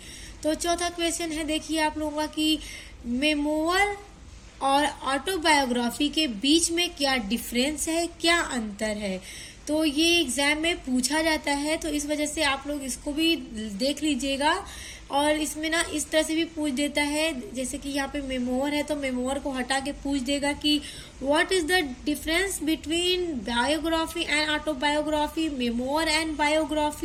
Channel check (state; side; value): identical; both; correlation 1.00